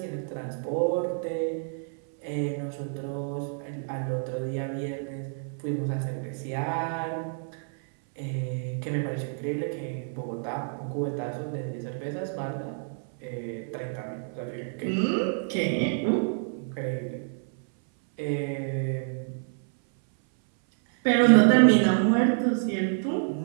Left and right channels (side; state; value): left; silent; 59 dB below the other